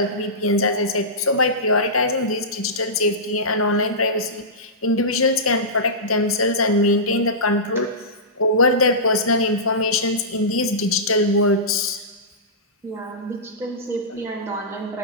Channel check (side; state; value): both; normal; correlation -0.18